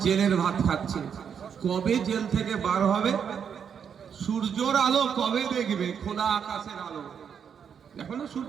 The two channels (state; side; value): quieter; left; 7.5 dB